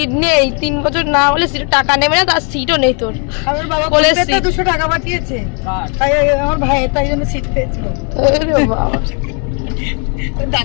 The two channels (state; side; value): quieter; right; 38.4 dB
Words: নেই 3 বছর না হলে সিটে টাকা নেবে না, তার সিটও নেই তোর। আমার বাবা 200 টাকা পাঠিয়েছে, তাই আমার ভাই তাই জন্য সিট পেয়েছিল।